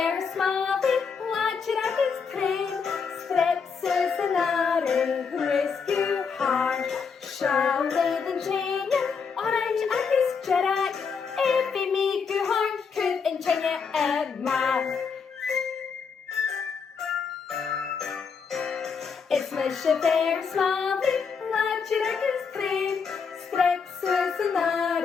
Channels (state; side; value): quieter; right; 5.8 dB